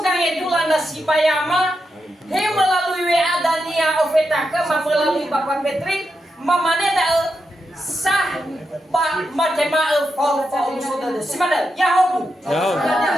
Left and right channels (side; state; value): both; normal; correlation 0.86